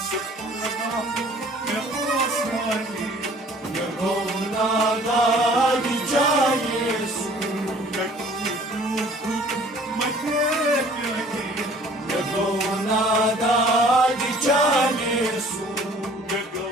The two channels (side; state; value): both; normal; correlation 0.53